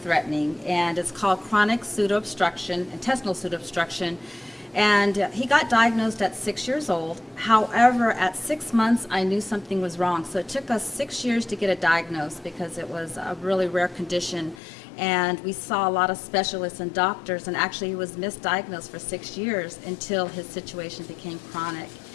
and it's called chronic pseudoobstruction, intestinal pseudoobstruction. And he got diagnosed at 6 years old. However, at 6 months, I knew something was wrong. So it took us 6 years to get it diagnosed because it was a really rare condition. And we saw a lot of specialists and doctors, and actually he was misdiagnosed for 6 years until his situation became chronic.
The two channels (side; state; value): right; drops out; at 14.6 s